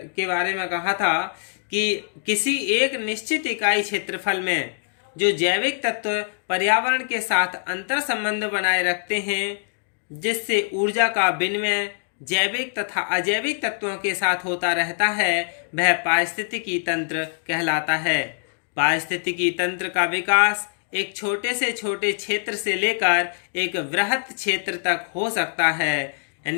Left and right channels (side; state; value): right; silent; digital silence